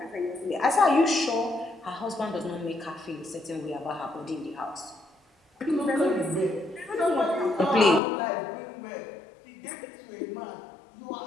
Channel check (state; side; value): drops out; right; at 8.0 s